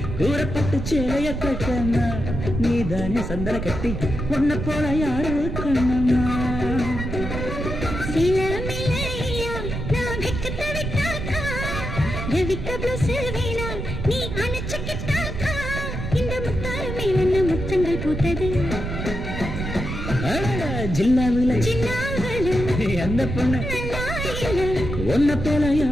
கூறப்பட்டு சேலைய கட்டம்மா நீதானே சந்தன கட்டி ஒன்ன போல யாரு கண்ணம்மா முத்தங்கள் பூத்தது ஜில்லாவுல எந்த பொண்ணு ஒன்ன போல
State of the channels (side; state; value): right; noise; rumble, 5 dB below the sound